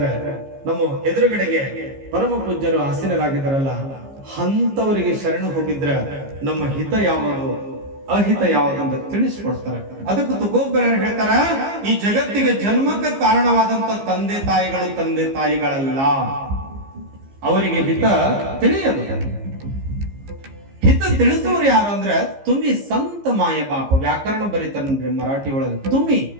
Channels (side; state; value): left; late; 15 ms